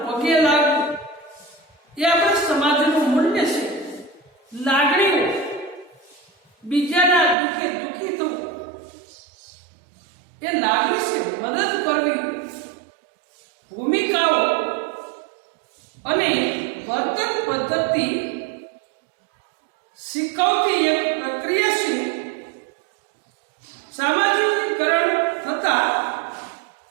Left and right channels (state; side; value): drops out; left; at 7.4 s